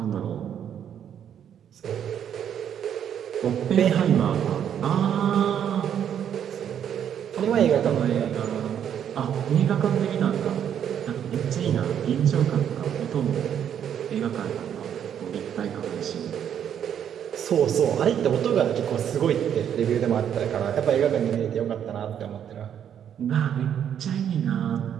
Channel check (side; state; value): left; quieter; 9.1 dB